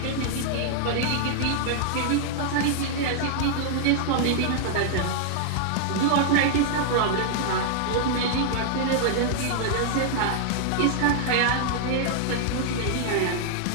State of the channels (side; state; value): both; different; correlation -0.01